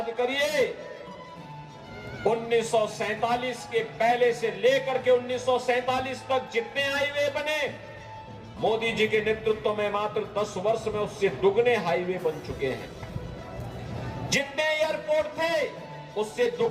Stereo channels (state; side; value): identical; both; correlation 1.00